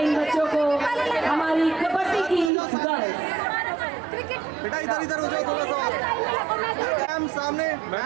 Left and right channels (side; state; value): left; drops out; at 2.5 s